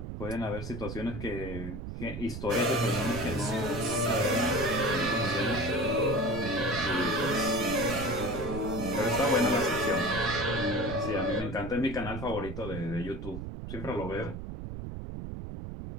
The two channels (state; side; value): noise; right; rumble, 7 dB below the sound